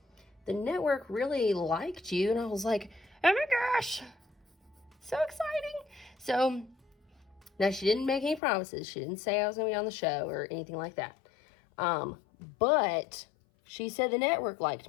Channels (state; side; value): drops out; right; at 8.4 s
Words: the Network really liked you. And I was like, oh my gosh, so exciting. So now she didn't make any promises. She didn't say I was going to be on the show or anything like that. But she said the Network liked